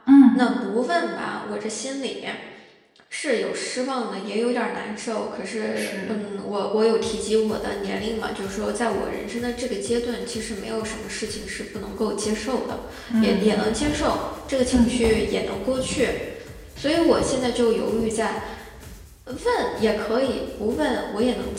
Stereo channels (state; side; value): identical; both; correlation 1.00